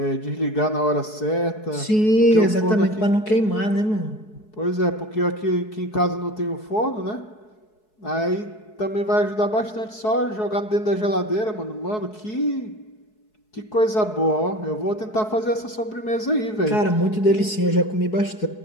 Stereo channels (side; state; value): right; late; 4.7 ms